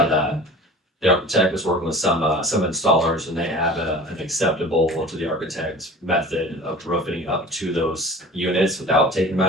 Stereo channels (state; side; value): normal; both; correlation 0.40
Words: the architect was working with some installers and they have an acceptable to the architect method of roofing up to those units without taking them